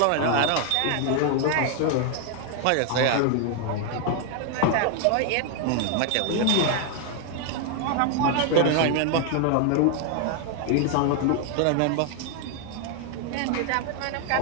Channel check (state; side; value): different; both; correlation 0.00